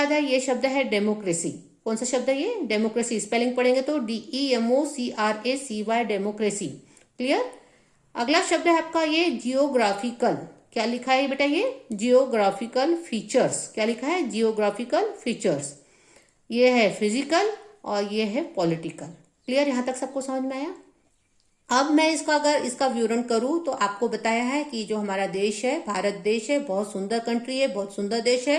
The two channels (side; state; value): both; identical; correlation 1.00